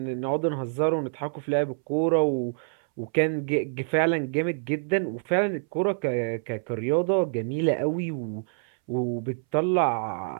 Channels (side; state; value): left; silent; 60 dB below the other